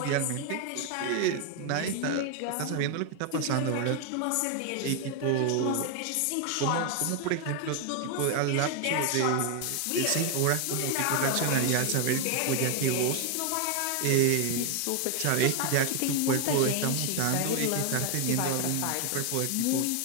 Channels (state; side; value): different; both; correlation 0.01